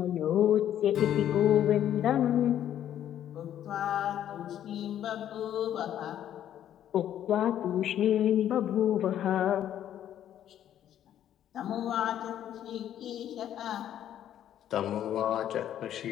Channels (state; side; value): quieter; right; 10.9 dB